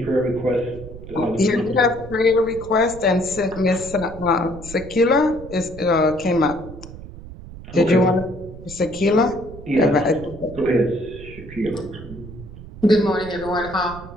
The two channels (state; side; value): noise; right; rumble, 15 dB below the sound